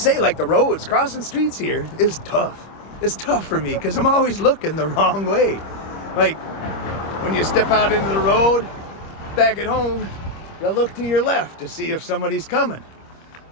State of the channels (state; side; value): late; right; 25 ms